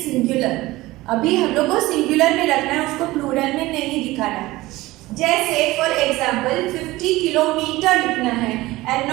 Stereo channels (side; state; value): left; quieter; 18.8 dB